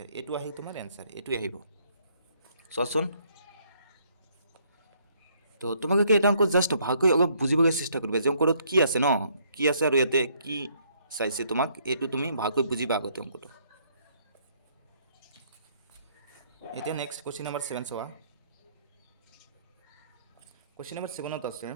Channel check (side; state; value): both; inverted; correlation -0.67